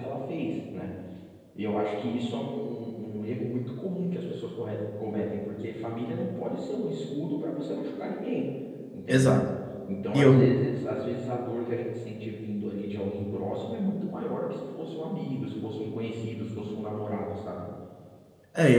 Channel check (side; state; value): both; identical; correlation 1.00